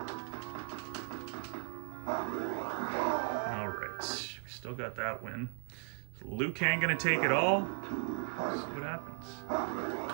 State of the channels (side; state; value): left; silent; 53 dB below the other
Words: Still got that win. Liu Kang gonna take it all? Let's see what happens.